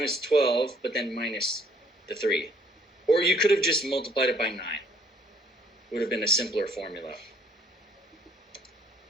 12, but then minus the 3. Or you could have just multiplied it by 9. Would have been a simpler formula.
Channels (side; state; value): both; normal; correlation 0.62